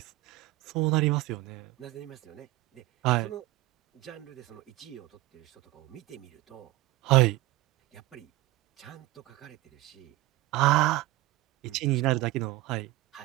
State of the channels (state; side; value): quieter; left; 18.6 dB